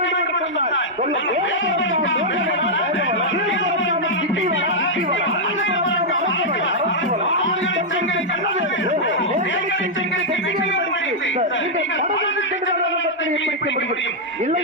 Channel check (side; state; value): both; normal; correlation -0.05